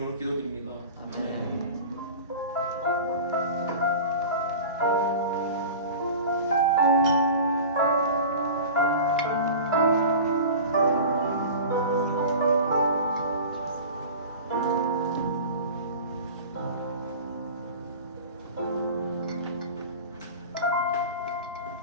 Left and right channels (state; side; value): inverted; both; correlation -0.35